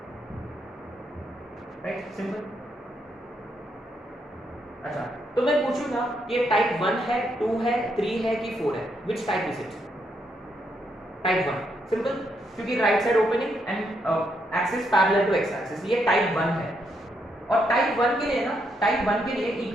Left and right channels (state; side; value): normal; both; correlation 0.77